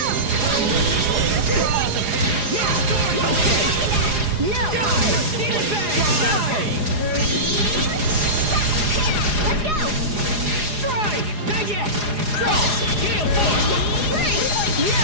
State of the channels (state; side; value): late; left; 4.8 ms